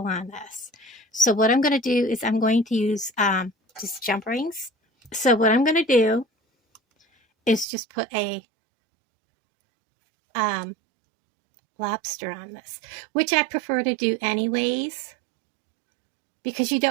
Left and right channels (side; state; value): left; drops out; at 7.7 s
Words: on this. So what I'm going to do is I'm going to use just jump rings. So what I'm going to do is just put a lobster on this, which I prefer to do anyways, because you